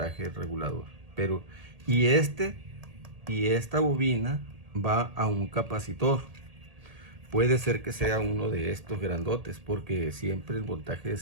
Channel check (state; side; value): late; left; 1.8 ms